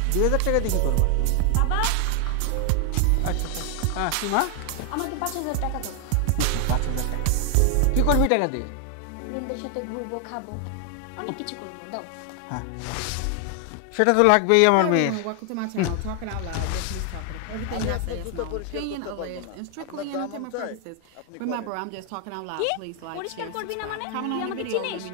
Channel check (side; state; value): both; different; correlation 0.00